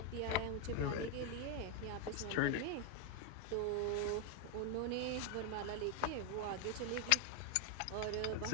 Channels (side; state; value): both; different; correlation 0.01